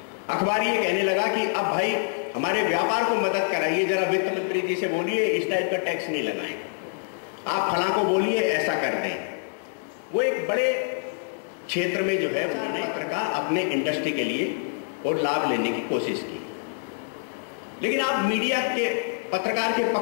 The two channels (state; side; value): silent; right; 61 dB below the other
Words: अखबार ये कहने लगा कि अब भाई हमारे व्यापार को मदद कराइए, जरा वित्त मंत्री जी से बोलिए इस टाइप का टैक्स नहीं लगाएं, आप फलां को बोलिए ऐसा कर दें। वो एक बड़े क्षेत्र में जो है उन्होंने पत्रकार अपने इंडस्ट्री के लिए और लाभ लेने की कोशिश की। लेकिन आप मीडिया के, पत्रकार के